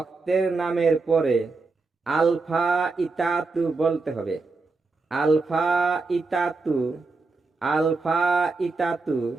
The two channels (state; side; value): quieter; left; 3.8 dB